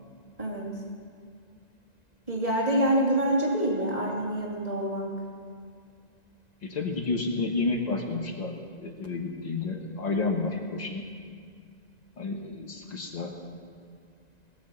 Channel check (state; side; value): late; right; 1.9 ms